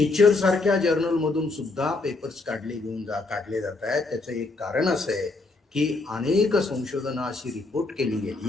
सारख्या जर्नलमधून सुद्धा पेपर्स काढले जात आहेत. त्याचं एक कारण असं आहे की अनेक संशोधनं अशी रिपोर्ट केली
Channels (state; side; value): quieter; right; 3.4 dB